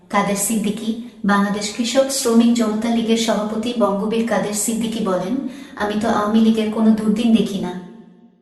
কাদের সিদ্দিকী, বাংলাদেশ কৃষক শ্রমিক জনতা লীগের সভাপতি বঙ্গবীর কাদের সিদ্দিকী বলেন, আমি তো আওয়ামী লীগের কোনো দুর্দিন দেখি না।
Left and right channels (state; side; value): identical; both; correlation 1.00